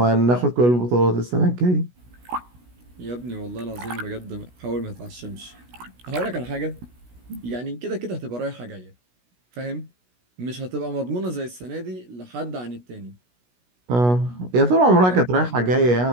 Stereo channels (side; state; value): left; late; 16 ms